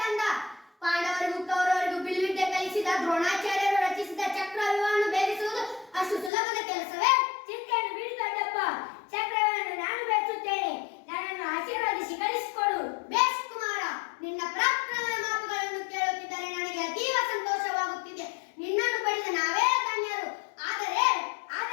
ಕಂದ? ಪಾಂಡವರಿಗೂ ಕೌರವರಿಗೂ ಬಿಲ್ವಿದ್ಯೆ ಕಲಿಸಿದ ದ್ರೋಣಾಚಾರ್ಯರು ರಚಿಸಿದ ಚಕ್ರವ್ಯೂಹವನ್ನು ಭೇದಿಸುವುದು ಅಷ್ಟು ಸುಲಭದ ಕೆಲಸವೇ? ಚಿಂತೆಯನ್ನು ಬಿಡಿ ದೊಡ್ಡಪ್ಪ. ಚಕ್ರವನ್ನು ನಾನು ಬೆಳೆಸುತ್ತೇನೆ. ನನ್ನನ್ನು ಆಶೀರ್ವದಿಸಿ ಕಳಿಸಿಕೊಡು. ಬೇಷ್ ಕುಮಾರ, ನಿನ್ನ ಪರಾಕ್ರಮದ ಮಾತುಗಳನ್ನು ಕೇಳುತ್ತಿದ್ದರೆ ನನಗೆ ಅತೀವ ಸಂತೋಷವಾಗುತ್ತಿದೆ. ನಿನ್ನನ್ನು ಪಡೆದ ನಾವೇ ಧನ್ಯರು. ಆದರೆ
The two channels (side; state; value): right; drops out; at 6.3 s